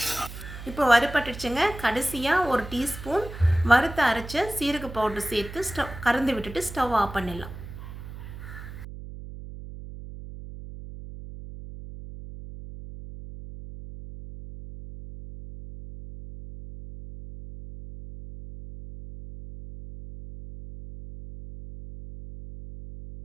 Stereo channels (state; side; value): noise; right; hum, 12 dB below the sound